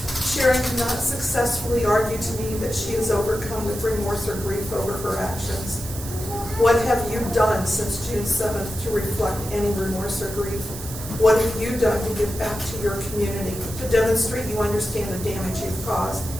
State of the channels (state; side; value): noise; right; hiss, 11 dB below the sound